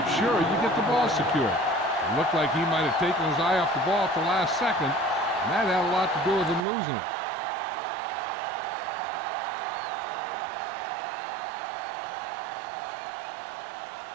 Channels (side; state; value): left; drops out; at 6.7 s